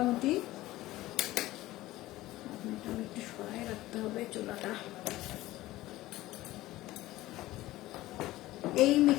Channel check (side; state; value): right; quieter; 16.9 dB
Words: একটু সরাই রাখতে হবে চুলাটা। এই